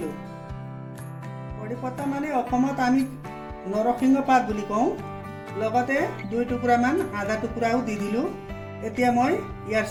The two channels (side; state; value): both; identical; correlation 1.00